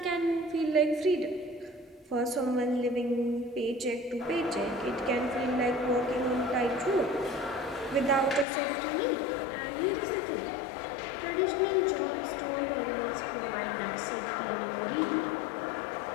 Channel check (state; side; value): drops out; right; at 8.5 s